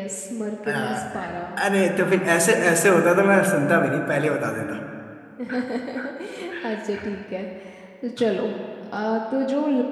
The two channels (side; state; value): both; identical; correlation 1.00